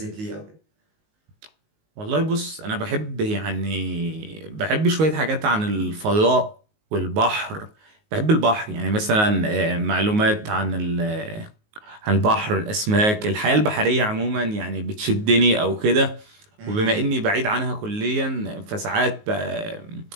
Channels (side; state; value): left; late; 19 ms